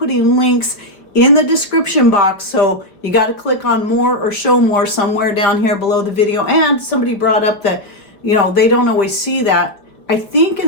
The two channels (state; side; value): late; right; 4.7 ms